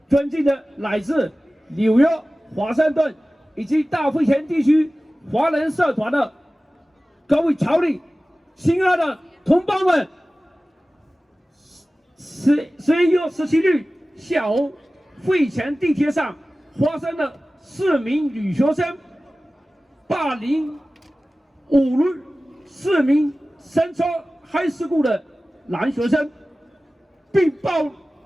尊敬的来自纽约、华盛顿以及大会前地区华人社团的各位侨领，亲爱的同胞们，11月17日下午，会前地铁上发生了4名女学生霸凌侮辱4名Central High School的男学生，并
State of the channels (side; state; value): both; normal; correlation 0.97